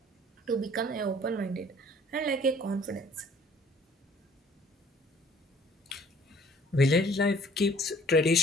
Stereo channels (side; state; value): both; normal; correlation 0.55